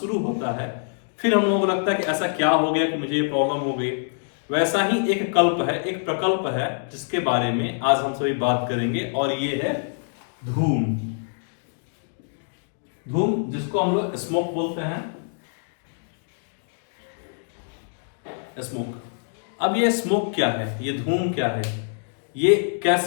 होता है, फिर हम लोगों को लगता है कि ऐसा क्या हो गया कि मुझे ये प्रॉब्लम हो गई। वैसा ही एक कल्प है, एक प्रकल्प है, जिसके बारे में आज हम सभी बात करेंगे, और ये है धूम। धूम, जिसको हम लोग स्मोक बोलते हैं, स्मोक। अब ये स्मोक क्या है, ये धूम क्या है, ये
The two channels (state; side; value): silent; right; digital silence